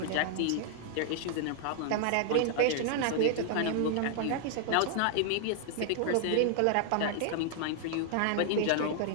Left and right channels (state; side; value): different; both; correlation -0.01